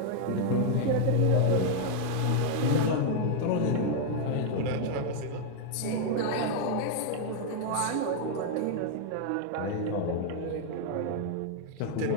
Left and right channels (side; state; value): both; different; correlation 0.00